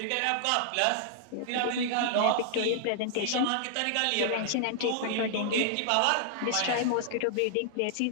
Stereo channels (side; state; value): both; different; correlation -0.01